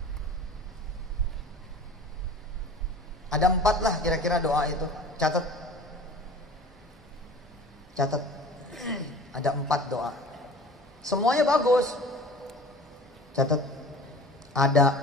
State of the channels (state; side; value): normal; both; correlation 0.41